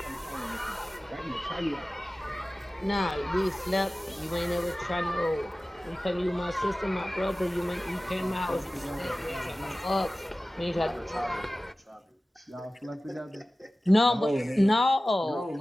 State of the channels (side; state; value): both; normal; correlation 0.97